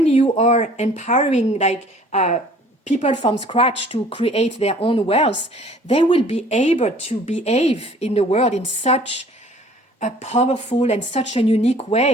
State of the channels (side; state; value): both; normal; correlation 0.53